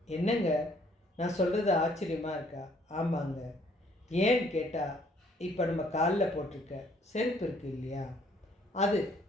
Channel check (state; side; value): normal; both; correlation 0.63